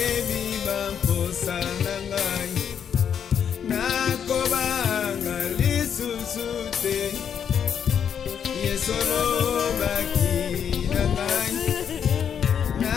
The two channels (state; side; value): quieter; right; 8.0 dB